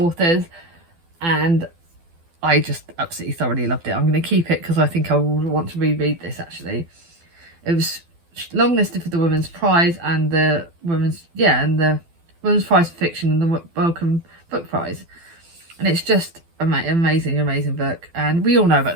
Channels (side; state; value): left; late; 12 ms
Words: and I just absolutely thoroughly loved it. I'm going to keep it because I think I will want to reread this, actually. It was longlisted for the Women's Prize and the Women's Prize for Fiction and the Wellcome Book Prize. And it's just amazing book. And we all know about